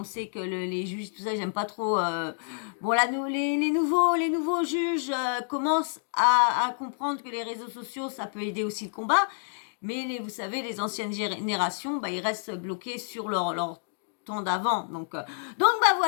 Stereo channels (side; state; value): right; silent; digital silence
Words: sait que les juges, tout ça, j'aime pas trop. Bon, là, les nouveaux juges commencent à comprendre que les réseaux sociaux, ça peut aider aussi le combat. Mais vous savez, les anciennes générations, bah, ils restent bloqués sur leur temps d'avant. Donc bah